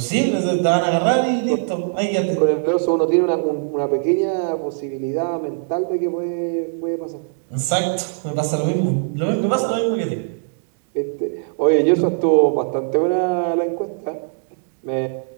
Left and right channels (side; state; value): left; silent; 65 dB below the other